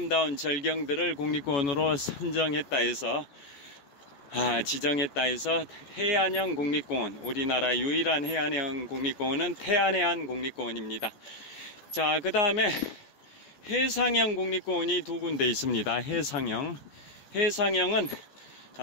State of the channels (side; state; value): right; late; 14 ms